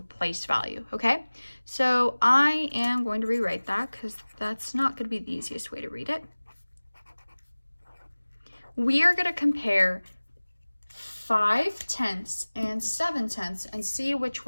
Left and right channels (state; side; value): inverted; both; correlation -1.00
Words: place value, okay? So I am going to rewrite that because that's not going to be the easiest way to read it. We are going to compare 5/10 and 7/10 and see which